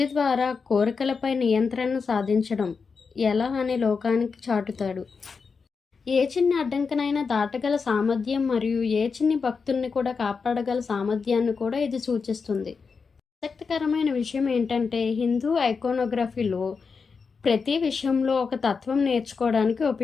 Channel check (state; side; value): quieter; right; 5.2 dB